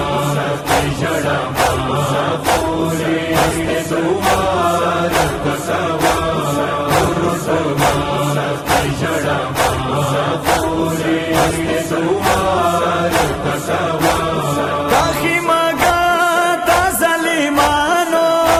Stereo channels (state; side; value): identical; both; correlation 1.00